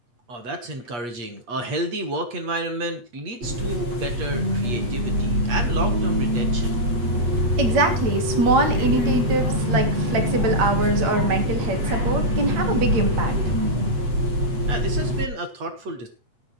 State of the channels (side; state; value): left; late; 8.4 ms